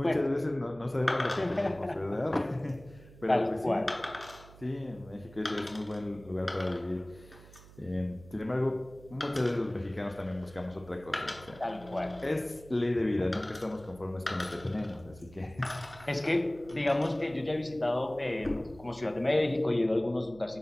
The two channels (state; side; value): noise; right; hum, 20 dB below the sound